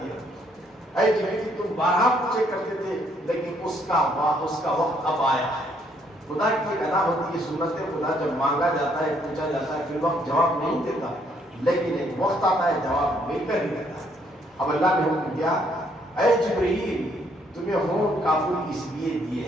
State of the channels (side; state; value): both; normal; correlation 0.68